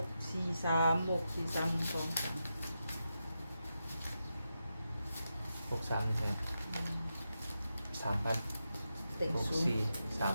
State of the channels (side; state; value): both; inverted; correlation -0.88